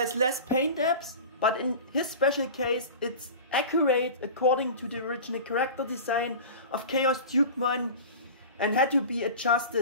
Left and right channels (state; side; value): inverted; both; correlation -0.34